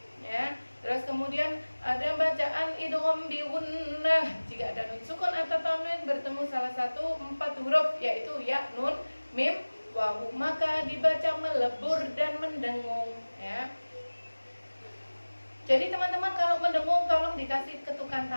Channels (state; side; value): inverted; both; correlation -1.00